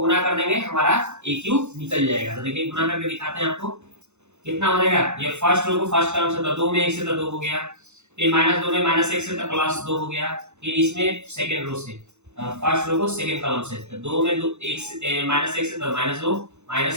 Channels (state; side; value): late; left; 0.83 ms